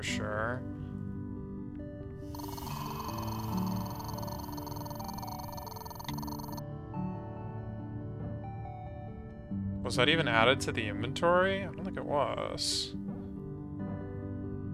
sure. Was that even added to the inventory? I don't think it was.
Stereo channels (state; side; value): identical; both; correlation 1.00